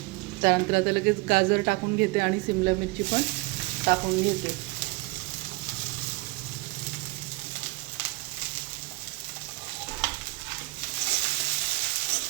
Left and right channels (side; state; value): left; quieter; 24.6 dB